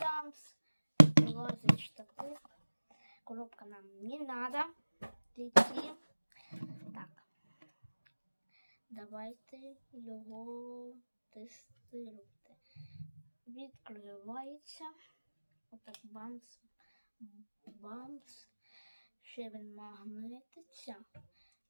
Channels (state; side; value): inverted; both; correlation -1.00